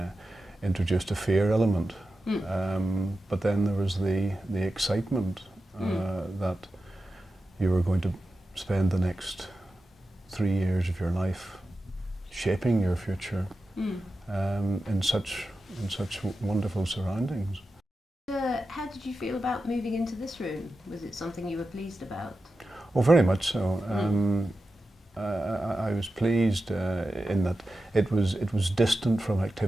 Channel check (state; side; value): normal; both; correlation 0.92